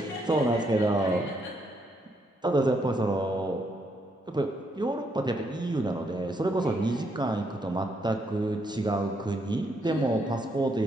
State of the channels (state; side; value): normal; both; correlation 0.75